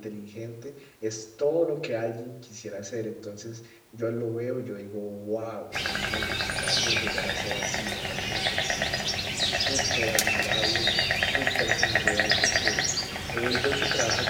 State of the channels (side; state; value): both; identical; correlation 1.00